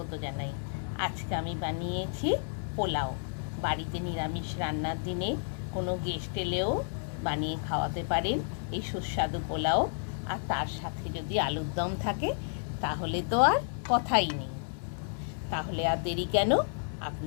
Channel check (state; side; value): silent; right; digital silence